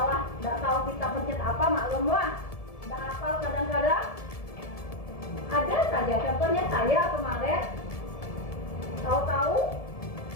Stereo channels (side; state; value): right; late; 1.7 ms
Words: nggak tahu kita pencet apa, maklumlah, nggak hafal kadang-kadang. Ada saja, contohnya saya kemarin tahu-tahu